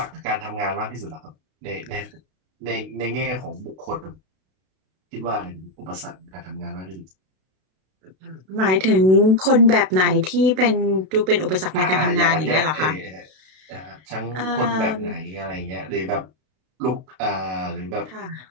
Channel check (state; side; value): late; left; 32 ms